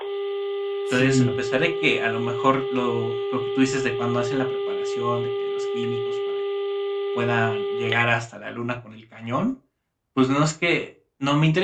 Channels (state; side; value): identical; both; correlation 1.00